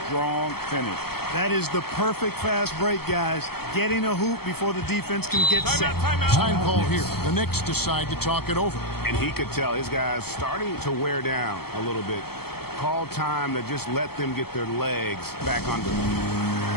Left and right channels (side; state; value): right; late; 0.96 ms